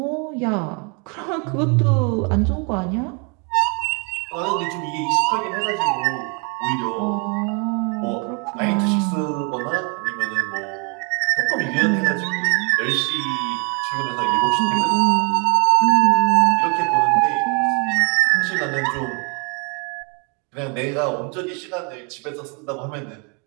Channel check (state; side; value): quieter; left; 34.6 dB